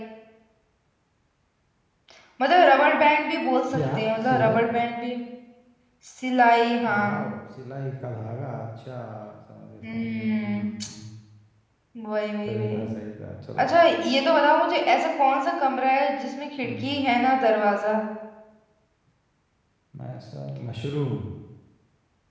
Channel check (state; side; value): identical; both; correlation 1.00